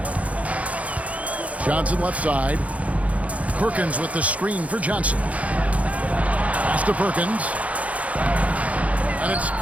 Johnson left side. Perkins with the screen for Johnson. Pass to Perkins. And it's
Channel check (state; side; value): late; left; 0.067 ms